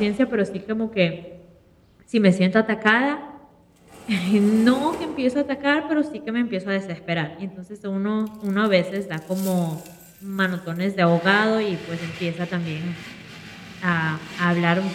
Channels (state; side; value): identical; both; correlation 1.00